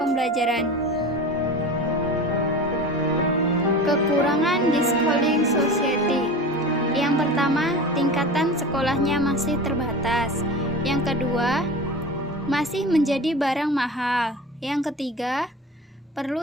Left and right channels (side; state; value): both; normal; correlation 0.33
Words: Kekurangan di schooling society. Yang pertama, tingkatan sekolahnya masih terbatas. Yang kedua, masih menjadi barang mahal. Yang ketiga,